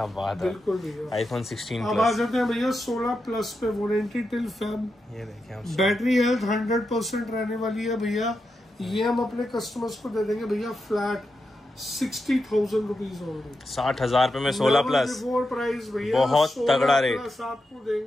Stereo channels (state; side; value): normal; both; correlation 0.87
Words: बात है। बिल्कुल भैया। iPhone 16 अब आ जाते हैं भैया 16 प्लस पे, वारंटी टिल फैब, ये देखें, बैटरी हेल्थ 100% रहने वाली है भैया। ये हम अपने कस्टमर्स को दे देंगे भैया फ्लैट 60,000 रुपीज ओनली। 60,000 रुपए में 16 प्लस प्राइस भैया, बहुत तगड़ा रेट। आपको